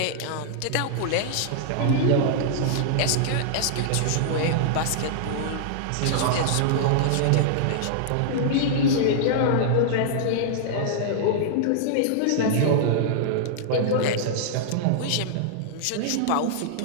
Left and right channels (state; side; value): different; both; correlation -0.01